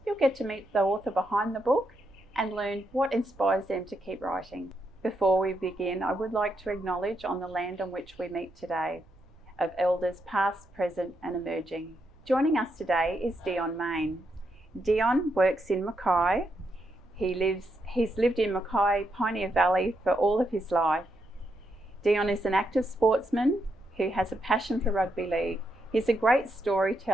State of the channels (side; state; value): right; noise; rumble, 26 dB below the sound